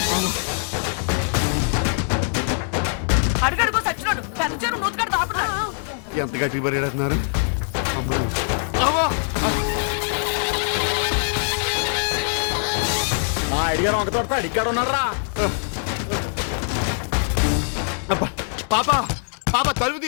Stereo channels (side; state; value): right; silent; digital silence